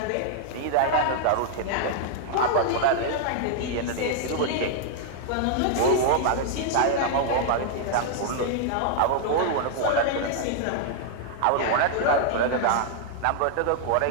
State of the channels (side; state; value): both; different; correlation -0.01